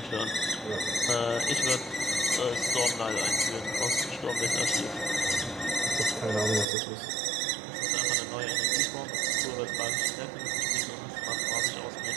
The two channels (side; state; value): left; drops out; at 6.7 s